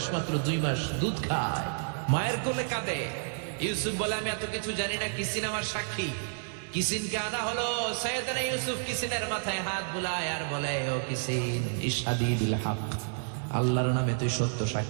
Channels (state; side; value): silent; left; 58 dB below the other